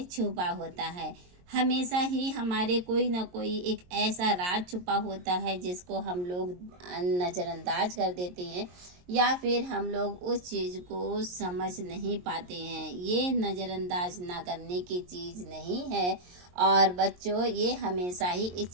छुपा होता है। हमेशा ही हमारे कोई ना कोई एक ऐसा राज छुपा होता है जिसको हम लोग नज़रअंदाज कर देते हैं, या फिर हम लोग उस चीज़ को समझ नहीं पाते हैं। ये नज़रअंदाज ना करने की चीज़ नहीं है। और बच्चों, ये हमेशा ही इस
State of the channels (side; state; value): left; late; 22 ms